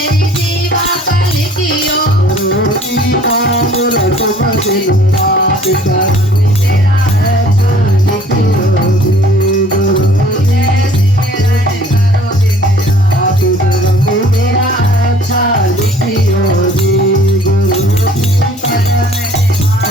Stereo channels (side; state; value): both; normal; correlation 0.53